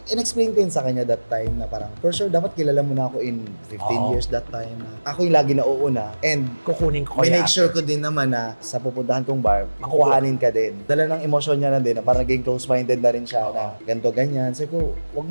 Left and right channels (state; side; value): inverted; both; correlation -1.00